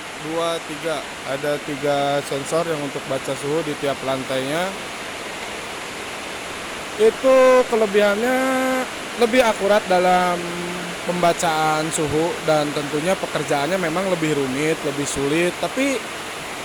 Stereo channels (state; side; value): identical; both; correlation 1.00